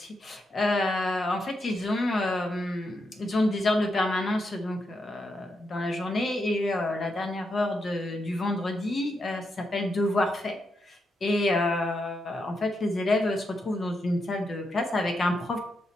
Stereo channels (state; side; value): normal; both; correlation 0.83